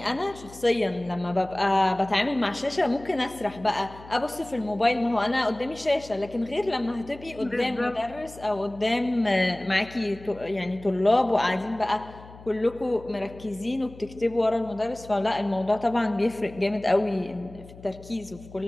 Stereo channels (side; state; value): left; noise; hum, 19 dB below the sound